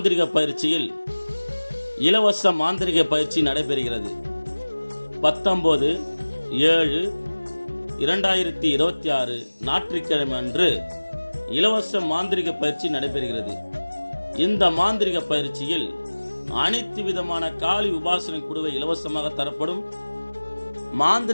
பயிற்சியில் இலவச மாந்திரிக பயிற்சி நடைபெறுகிறது. 19/7/2026 ஞாயிற்றுக்கிழமை அன்று இலவச மாந்திரிக பயிற்சி நடைபெறுகிறது. இந்த மாந்திரிக பயிற்சியில் அனைத்து விதமான காளி உபாசனை குடுவை இலவசமாக தரப்படும்,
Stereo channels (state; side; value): inverted; both; correlation -1.00